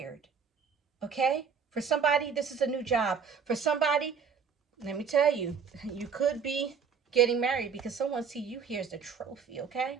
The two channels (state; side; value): quieter; left; 6.3 dB